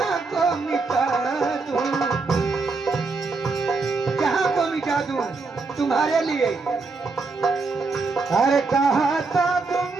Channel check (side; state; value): left; quieter; 4.0 dB